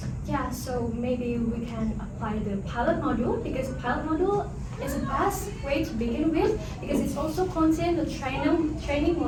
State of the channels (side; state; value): both; identical; correlation 1.00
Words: Yeah, so maybe we can apply the pilot module, because the pilot module is the best way to begin with, because it's also contain the training